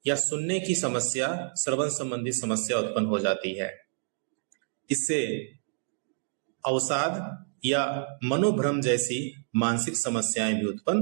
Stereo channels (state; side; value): silent; left; digital silence